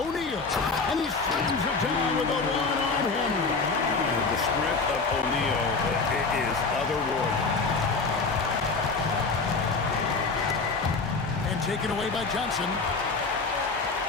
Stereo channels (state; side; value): quieter; right; 4.2 dB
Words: And he slams it down with a one-arm hammer. The sprint of O'Neal is otherworldly. And taken away by Johnson.